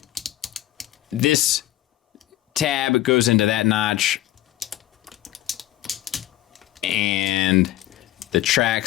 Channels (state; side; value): quieter; right; 14.4 dB